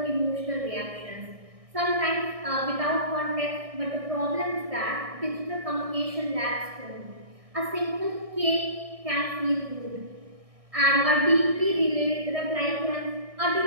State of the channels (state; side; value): late; left; 1.6 ms